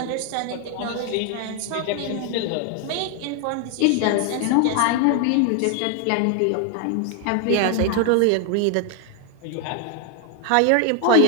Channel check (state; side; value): different; both; correlation 0.01